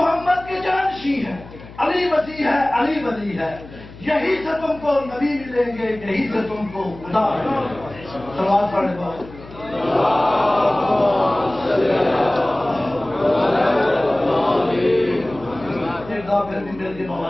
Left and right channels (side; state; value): left; noise; hum, 18 dB below the sound